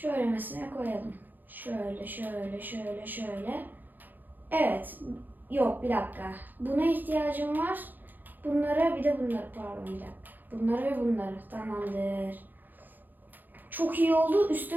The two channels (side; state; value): left; late; 0.087 ms